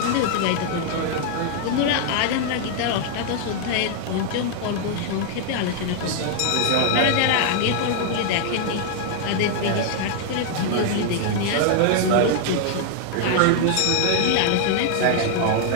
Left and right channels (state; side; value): different; both; correlation 0.00